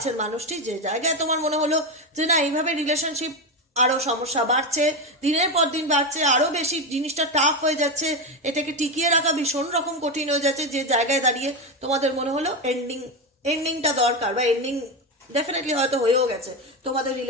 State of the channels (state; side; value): normal; both; correlation 0.14